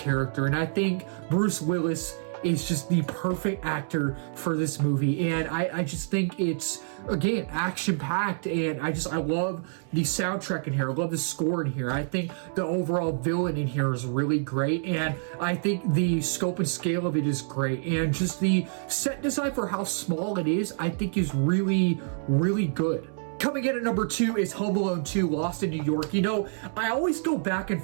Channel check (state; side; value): silent; left; digital silence